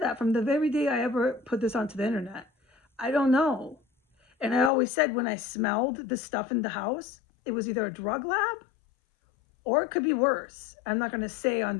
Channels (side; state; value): right; drops out; at 4.7 s